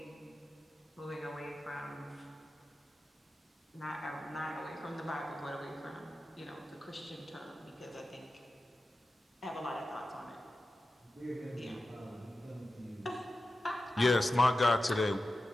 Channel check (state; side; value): normal; both; correlation 0.93